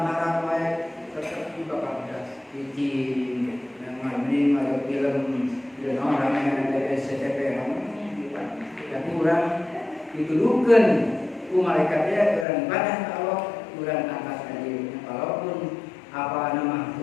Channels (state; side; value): drops out; right; at 12.5 s